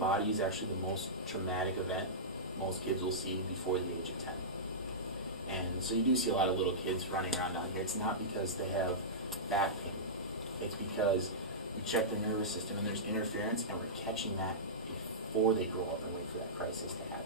is actually the most traumatic event most kids will see before the age of 10. And so you do see a lot of little kids running around down here. It's not because they have back pain. It's because we check their nervous system and there's interference, and we're catching that before they grow up and wait for that crisis to happen.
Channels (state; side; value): normal; both; correlation -0.17